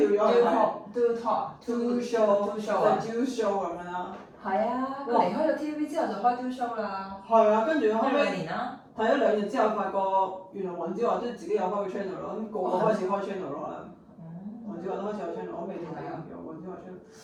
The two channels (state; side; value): identical; both; correlation 1.00